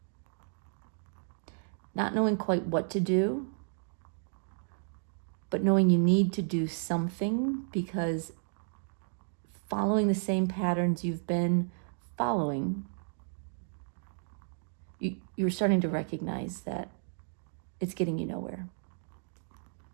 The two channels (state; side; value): silent; left; digital silence